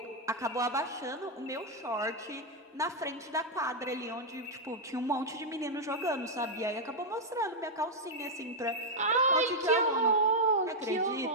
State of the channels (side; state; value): both; normal; correlation -0.03